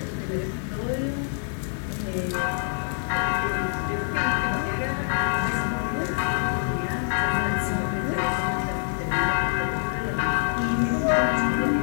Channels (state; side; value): silent; right; 61 dB below the other